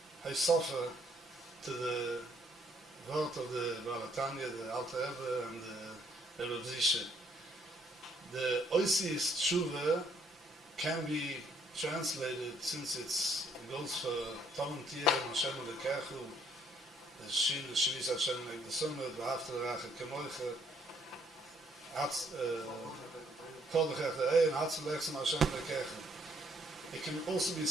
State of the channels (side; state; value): both; normal; correlation 0.67